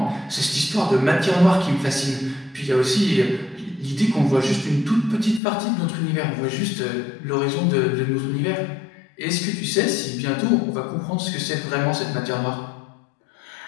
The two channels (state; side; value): drops out; right; at 5.4 s